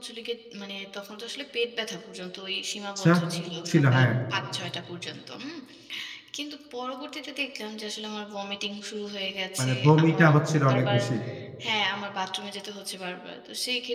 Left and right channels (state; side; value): identical; both; correlation 1.00